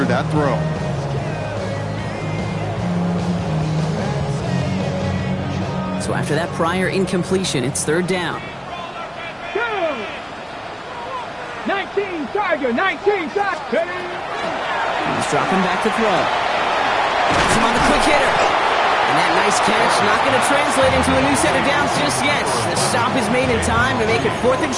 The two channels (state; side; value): identical; both; correlation 1.00